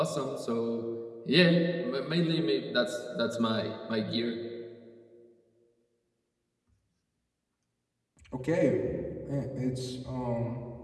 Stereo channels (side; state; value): both; identical; correlation 1.00